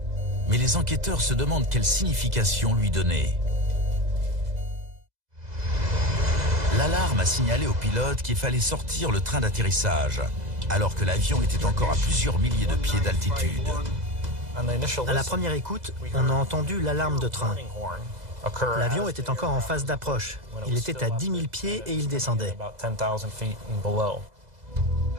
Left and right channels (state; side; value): late; left; 2.0 ms